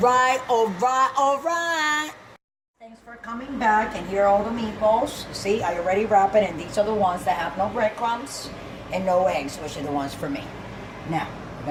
all right, all right. Thanks for coming back, and here are all the meatballs. You see, I already wrapped it, and these are the ones that have no breadcrumbs and no eggs, which are the ones for me. Now,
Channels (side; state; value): both; identical; correlation 1.00